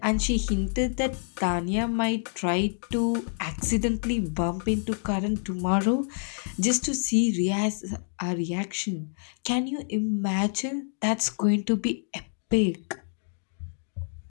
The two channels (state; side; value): silent; right; digital silence